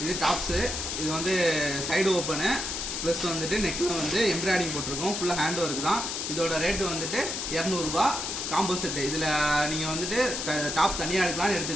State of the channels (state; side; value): noise; left; hiss, 3 dB below the sound